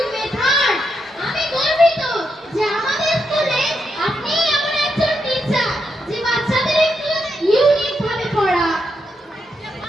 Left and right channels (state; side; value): normal; both; correlation 0.82